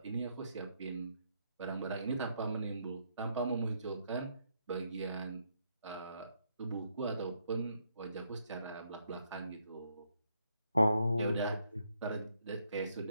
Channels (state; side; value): inverted; both; correlation -0.74